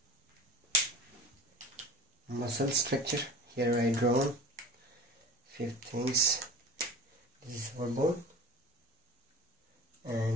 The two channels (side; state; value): both; normal; correlation 0.39